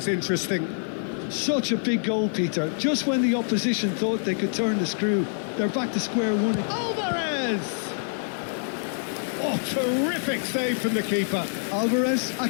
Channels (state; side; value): silent; right; digital silence